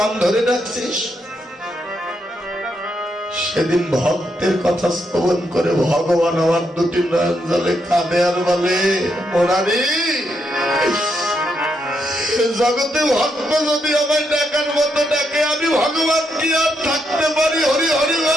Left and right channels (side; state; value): both; normal; correlation 0.79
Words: ধরে ডাকছিস? সেদিন ভক্তের কথা শ্রবণ করে ভগবান আমার দুটি নয়ন জলে কাঁদে আর বলে, মুরারি জগতে ভক্ত যদি আমায় ডাকার মতো ডাকে, আমি ভগবান কি আর থাকতে পারি? হরি হরি হরি